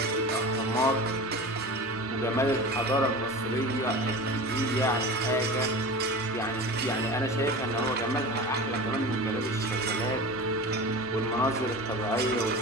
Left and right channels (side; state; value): both; normal; correlation 0.32